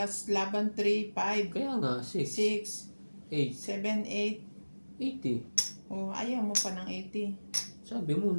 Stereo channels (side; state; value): both; inverted; correlation -1.00